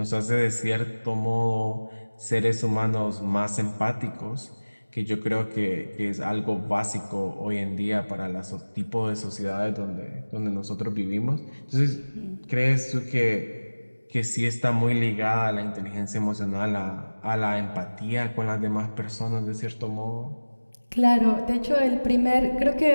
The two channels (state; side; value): inverted; both; correlation -1.00